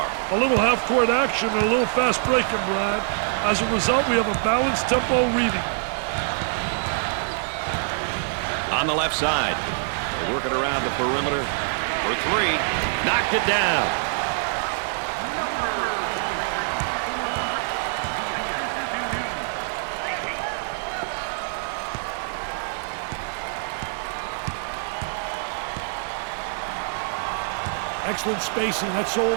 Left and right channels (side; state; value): left; silent; digital silence